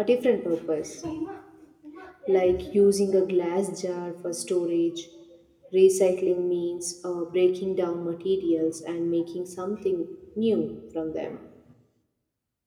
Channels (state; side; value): identical; both; correlation 1.00